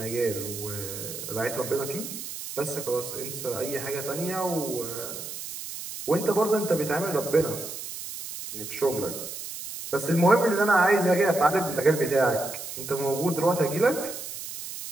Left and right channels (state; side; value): noise; right; hiss, 9 dB below the sound